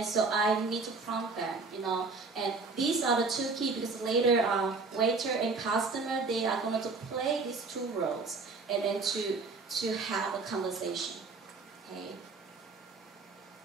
so I need to prompt them, And these are the two key, because later waiter and customer, they are going to play these two roles, and then to have a conversation. Okay.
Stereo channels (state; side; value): quieter; left; 4.1 dB